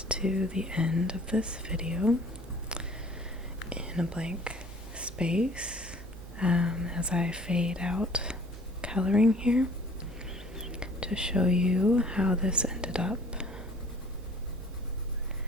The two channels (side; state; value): both; normal; correlation 0.52